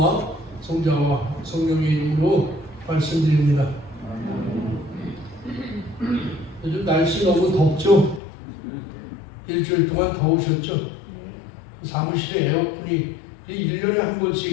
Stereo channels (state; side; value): drops out; right; at 8.2 s